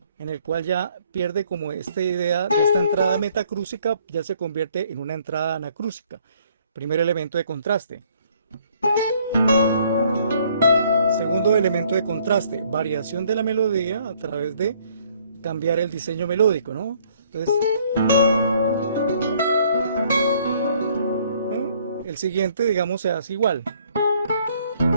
en el cual ya pierde como esta idea de esta entrada metacrúsica, ya se convierte en una entrada anacrúsica. Primer elemento de contraste. Segundo elemento de contraste, variación de la melodía a través de cambiar el diseño melódico, ¿no? Entonces, el siguiente, digamos, se hace igual.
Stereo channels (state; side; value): inverted; both; correlation -0.63